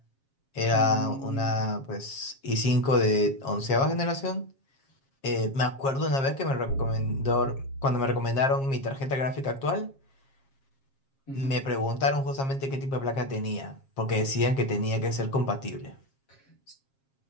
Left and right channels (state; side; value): late; right; 7.4 ms